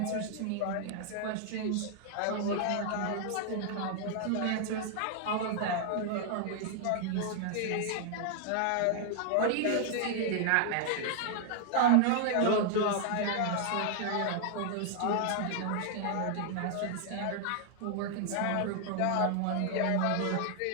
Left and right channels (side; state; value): both; different; correlation 0.00